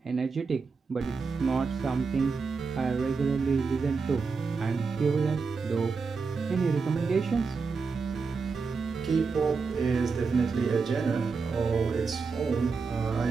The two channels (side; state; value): left; quieter; 4.8 dB